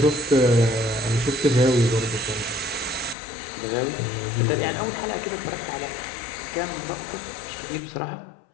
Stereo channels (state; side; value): drops out; right; at 3.2 s